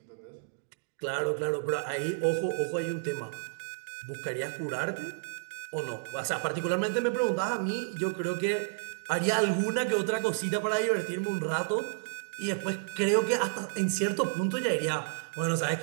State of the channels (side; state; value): left; silent; digital silence